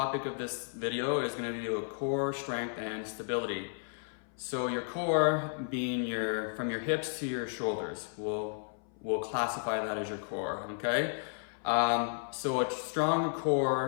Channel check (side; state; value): right; silent; 56 dB below the other